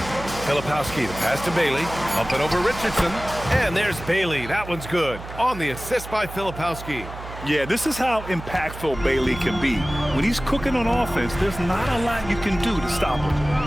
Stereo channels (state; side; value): noise; right; hum, 12 dB below the sound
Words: Filipowski, the pass to Bailey. Up and over Richardson. And there's Bailey. That one's good. On the assist by Filipowski. Yeah, this is how impactful Bailey can be. When he's cooking on offense, there's not a lot you can do to stop him.